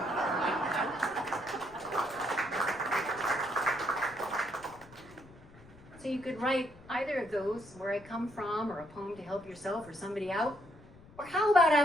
So you could write either of those, where I come from, or a poem to help yourself or somebody out. Or how about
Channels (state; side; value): noise; left; rumble, 22 dB below the sound